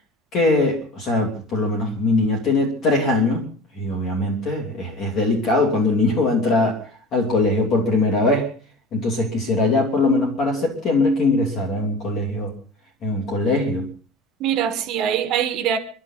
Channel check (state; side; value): normal; both; correlation 0.37